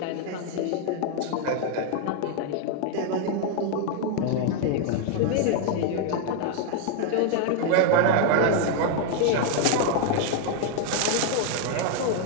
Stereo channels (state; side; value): different; both; correlation 0.00